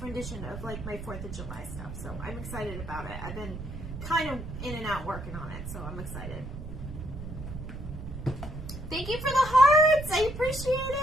rendition of like my 4th of July stuff. So I'm excited about it. I've been kind of in and out working on it, so I'm excited. Thank you for the hearts. I appreciate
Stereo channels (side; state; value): right; noise; rumble, 9 dB below the sound